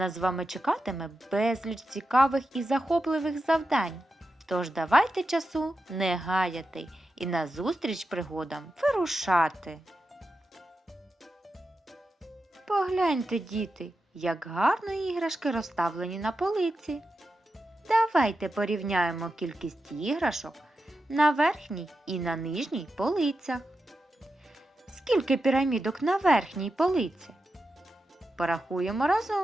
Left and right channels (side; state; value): both; normal; correlation 0.89